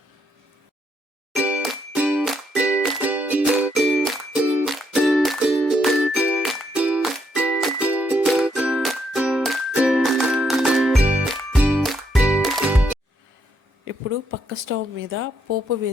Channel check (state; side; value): normal; both; correlation 0.75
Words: ఇప్పుడు పక్క స్టవ్ మీద పోపు